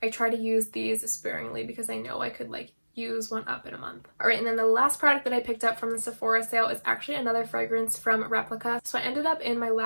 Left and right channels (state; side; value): inverted; both; correlation -1.00